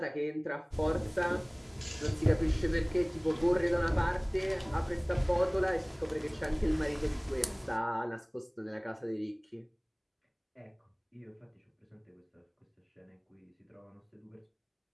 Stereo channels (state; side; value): identical; both; correlation 1.00